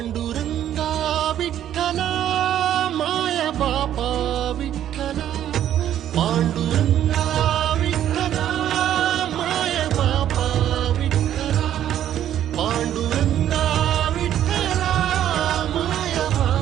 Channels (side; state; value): left; quieter; 11.1 dB